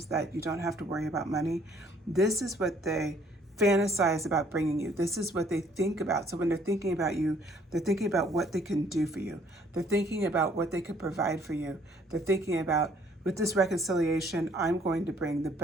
that you don't have to worry about money. This is what they fantasize about bringing you. This is what they think about. So when they're thinking about you, they're thinking about what they can do for you. They're thinking about what they could provide for you. They're thinking about, with this reconciliation, I'm going to bring the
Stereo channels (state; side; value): normal; both; correlation 0.62